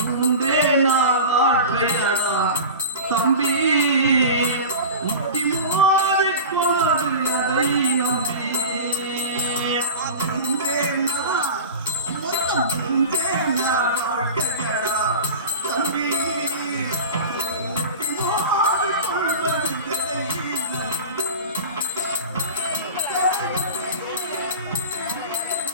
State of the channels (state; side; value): inverted; both; correlation -0.32